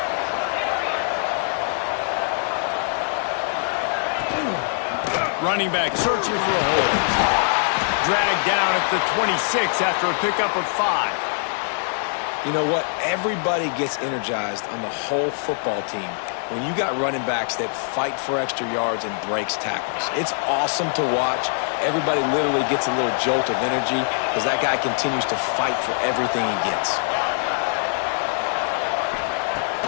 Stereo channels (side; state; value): right; silent; 63 dB below the other